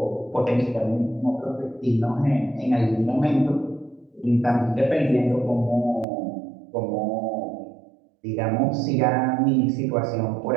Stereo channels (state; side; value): drops out; left; at 6.1 s